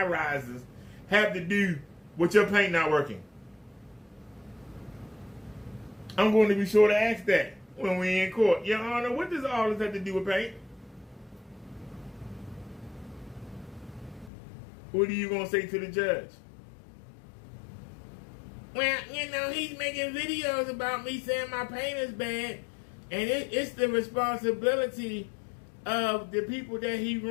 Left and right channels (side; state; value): right; drops out; at 14.3 s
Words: rises have to do with your paint not working? I'm going to be sure to ask that when we're in court. Your Honor, what does all this have to do with paint? What are you going to say to the judge? Well, you know, he's making videos about me saying my paint is bad, and it's the responsibility of the people that he